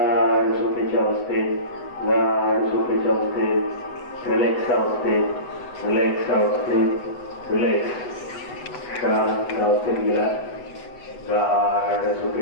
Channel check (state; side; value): late; right; 8.1 ms